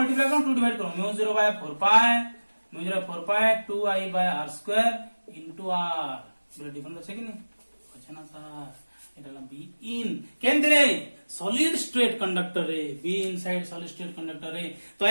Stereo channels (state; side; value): inverted; both; correlation -1.00